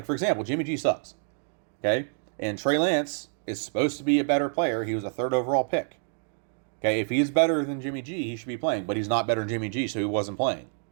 for example, Jimmy G sucks. Okay? And Trey Lance is supposed to be a better player. He was a 3rd overall pick. Okay, if he's better than Jimmy G, he should be playing, but he's not better than Jimmy G, so he wasn't playing.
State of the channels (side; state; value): left; silent; digital silence